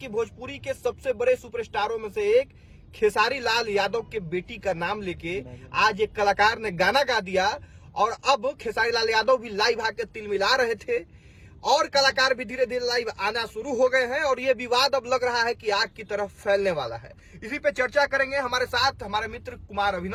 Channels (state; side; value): identical; both; correlation 1.00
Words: भोजपुरी के सबसे बड़े सुपरस्टारों में से एक खेसारी लाल यादव के बेटी का नाम लेके आज एक कलाकार ने गाना गा दिया और अब खेसारी लाल यादव भी लाइव आके तिल मिला रहे थे और कलाकार भी धीरे धीरे लाइव आना शुरू हो गए हैं और ये विवाद अब लग रहा है कि आग की तरफ फैलने वाला है। इसी पे चर्चा करेंगे। हमारे साथ हमारे मित्र कुमार